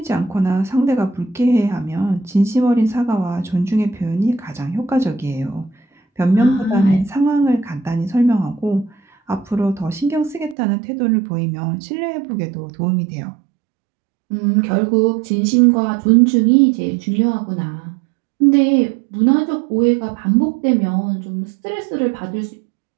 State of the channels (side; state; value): left; drops out; at 10.6 s